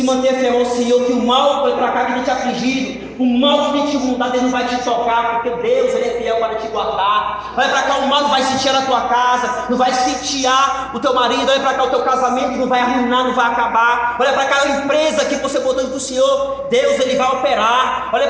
manter fiel ao Senhor, que o mal vai para cá que tem te afligido, o mal que tem te mudado, Ele não vai te tocar, porque Deus, Ele é fiel para te guardar. Olha para cá, o mal não vai sitiar a tua casa, não vai sitiar o teu marido. Olha para cá, o teu casamento não vai arruinar, não vai acabar. Olha para cá, a empresa que você botou do Senhor, Deus, Ele vai operar. Olha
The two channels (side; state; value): both; identical; correlation 1.00